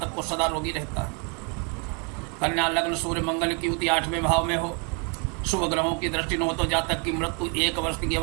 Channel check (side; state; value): left; quieter; 35.6 dB